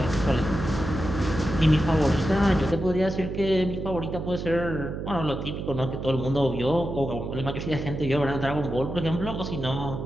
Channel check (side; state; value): right; noise; hum, 6 dB below the sound